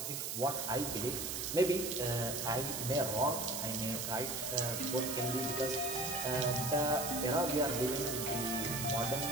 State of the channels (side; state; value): right; noise; hiss, 3 dB below the sound